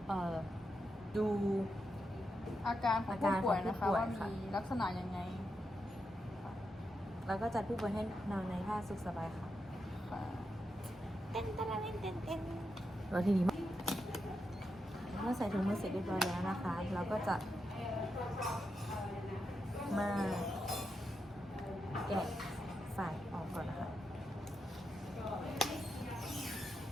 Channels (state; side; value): normal; both; correlation 0.86